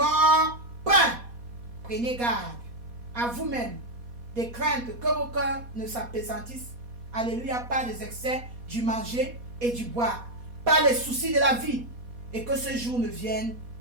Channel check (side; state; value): left; late; 4.2 ms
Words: pas. Prenez garde à vous-même des craintes que vos cœurs ne s'appesantissent. Alléluia, par les excès du manger et du boire, par les soucis de la vie, et que ce jour ne vienne